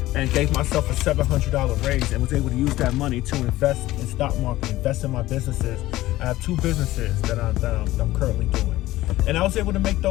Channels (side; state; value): right; quieter; 16.5 dB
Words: and gave myself a $700 raise, and was able to use that money to invest in stock market, invest in my businesses. I have two businesses that I'm currently doing, and I was able to make